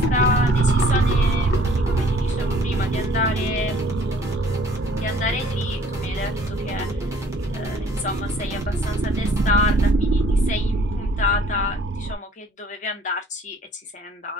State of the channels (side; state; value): both; normal; correlation 0.56